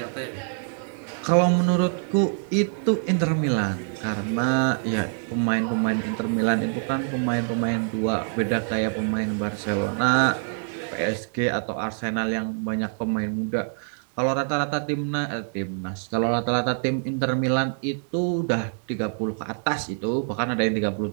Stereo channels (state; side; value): silent; left; 62 dB below the other